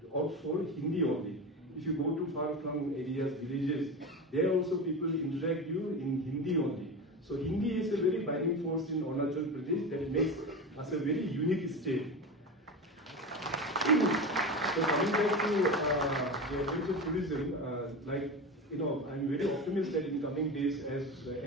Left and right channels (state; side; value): normal; both; correlation 0.24